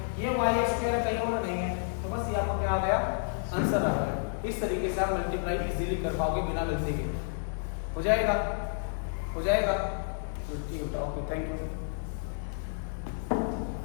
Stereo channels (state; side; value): silent; right; digital silence